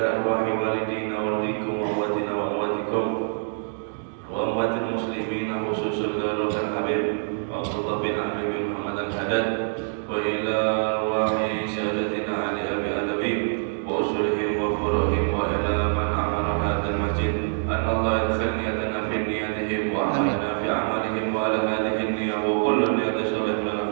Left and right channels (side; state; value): left; silent; digital silence